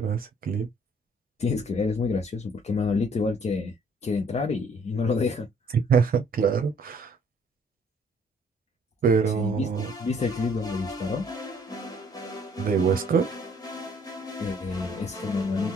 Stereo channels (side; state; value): both; normal; correlation 0.61